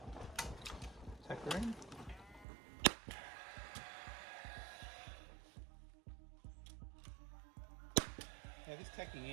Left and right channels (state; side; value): drops out; left; at 2.5 s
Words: Tack her in. Now this tacking